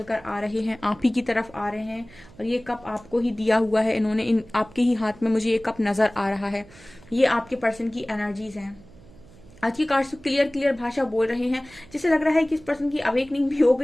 आ रहे हैं, आप ही की तरफ आ रहे हैं, और ये कप आपको ही दिया हुआ है इन्होंने, आपके ही हाथ में मुझे ये कप नजर आ रहा है। ये आपके पर्सन की एनर्जीज हैं। आज की कार्ड्स क्लियर क्लियर भाषा बोल रहे हैं, जिससे लग रहा है कि इस पर्सन की अवेकनिंग भी हो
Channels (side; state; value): right; noise; hum, 23 dB below the sound